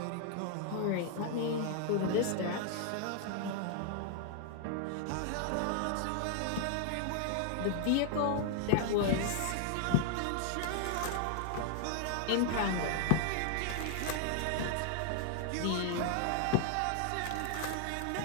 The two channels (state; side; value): different; both; correlation 0.00